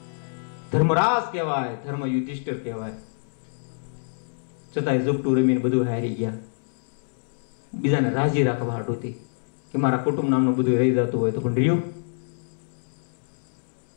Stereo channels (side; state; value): right; silent; digital silence